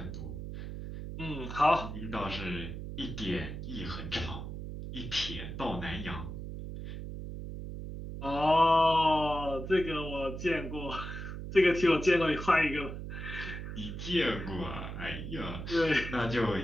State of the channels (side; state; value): right; noise; hum, 7 dB below the sound